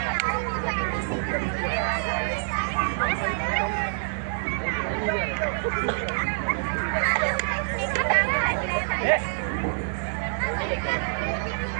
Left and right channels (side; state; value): left; silent; 61 dB below the other